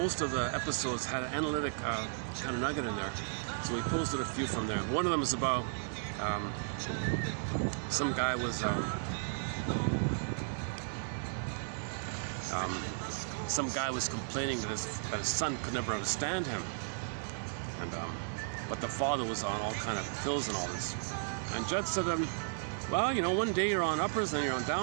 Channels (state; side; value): silent; left; digital silence